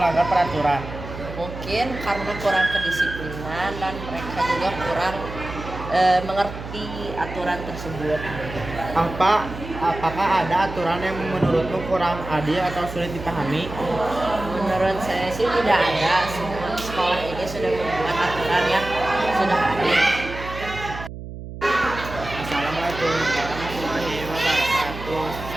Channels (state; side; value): noise; right; hum, 11 dB below the sound